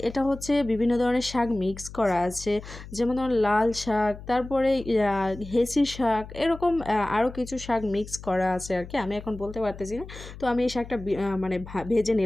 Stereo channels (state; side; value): noise; left; hum, 14 dB below the sound